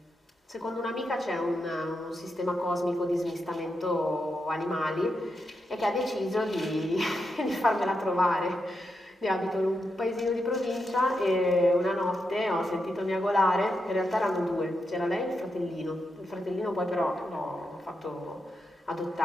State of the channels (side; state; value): both; normal; correlation 0.85